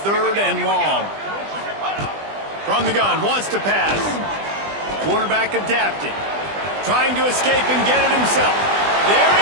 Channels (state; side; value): late; left; 20 ms